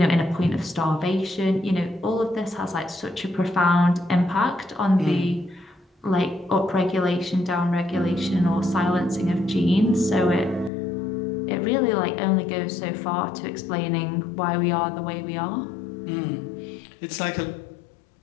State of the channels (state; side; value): drops out; right; at 10.7 s